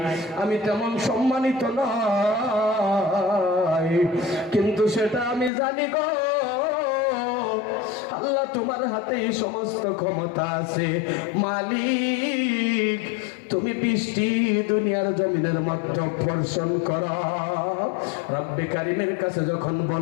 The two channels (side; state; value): right; drops out; at 5.5 s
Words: আমি তেমন সম্মানিত নয়, কিন্তু সেটা আমি জানি গো, আল্লাহ তোমার হাতেই সমস্ত ক্ষমতা আছে মালিক, তুমি বৃষ্টি দুনিয়ার জমিনের মধ্যে বর্ষণ করো। রব্বে কারিমের কাছে যখন